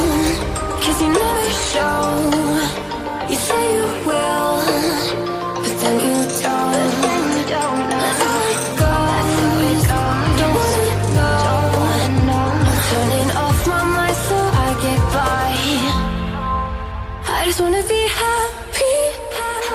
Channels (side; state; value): both; identical; correlation 1.00